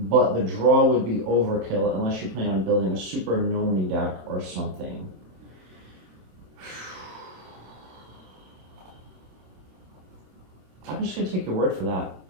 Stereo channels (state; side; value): late; left; 27 ms